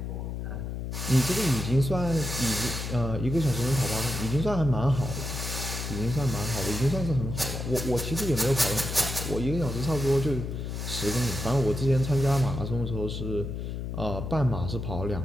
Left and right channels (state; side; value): noise; left; hum, 5 dB below the sound